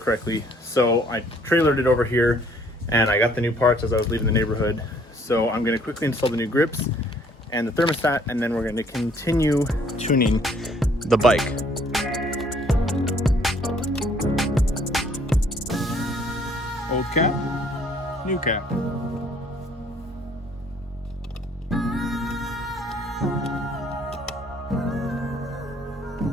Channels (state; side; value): normal; both; correlation 0.61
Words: So I trailered it over here, and I got the new parts as I was leaving the neighborhood. So I'm gonna quickly install the new grips and the thermostat, and then we're gonna continue tuning the bike. Old cap, new cap.